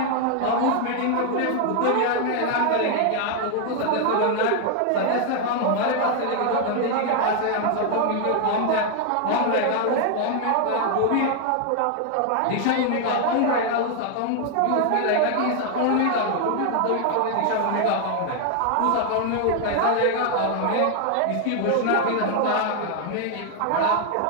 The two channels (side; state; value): both; different; correlation 0.00